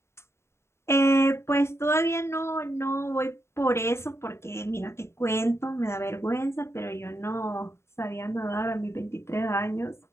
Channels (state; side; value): late; right; 0.13 ms